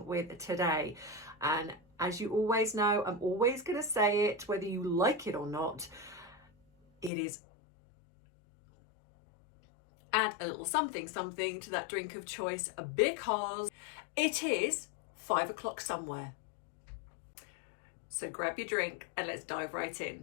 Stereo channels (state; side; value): drops out; right; at 7.1 s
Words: with today? And as you always know, I'm always going to say it, whether you like it or not, it is add a little something to that drink of choice because it is 5 o'clock somewhere. So grab your drink and let's dive right